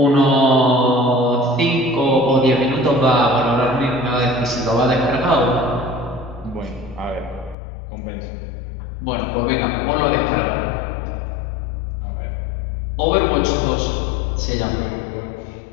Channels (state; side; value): drops out; right; at 7.6 s